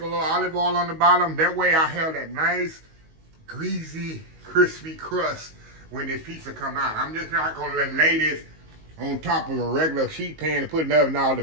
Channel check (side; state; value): left; late; 19 ms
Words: a little olive oil on the bottom. That way I have that nice, greasy, crispy crust when this pizza come out. I'm just not going to lay this on top of a regular sheet pan and put it in the oven. Now, the